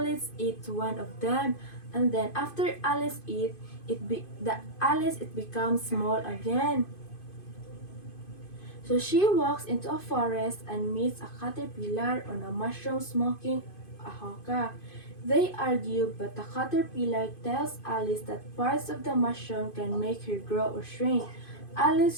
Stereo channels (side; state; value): right; late; 2.5 ms